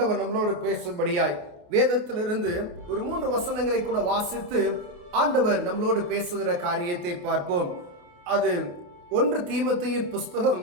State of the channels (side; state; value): left; late; 28 ms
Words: நம்மளோடு பேசும்படியாய் வேதத்திலிருந்து ஒரு 3 வசனங்களை கூட வாசித்து ஆண்டவர் நம்மளோடு பேசுகிற காரியத்தை பார்ப்போம். அது 1 தீமோத்தேயுவின் புஸ்தகம்